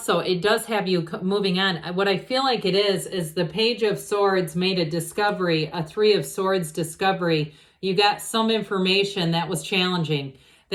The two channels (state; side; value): identical; both; correlation 1.00